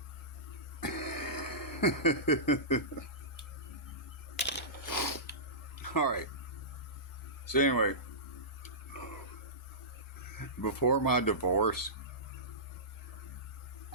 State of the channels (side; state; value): both; normal; correlation -0.19